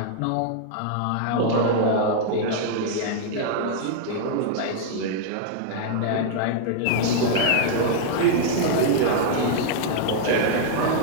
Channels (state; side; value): different; both; correlation -0.01